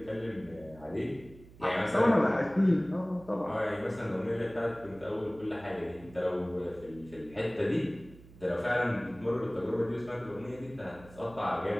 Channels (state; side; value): noise; right; hum, 21 dB below the sound